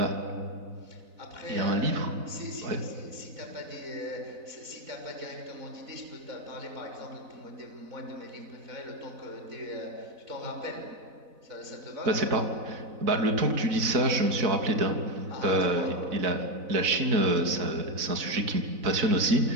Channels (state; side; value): late; left; 4.0 ms